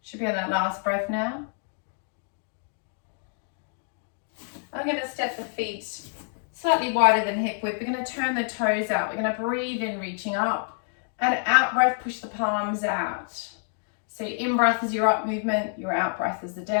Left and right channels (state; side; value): silent; right; 60 dB below the other